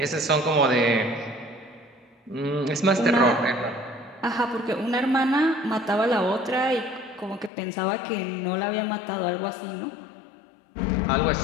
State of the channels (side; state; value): right; drops out; at 7.5 s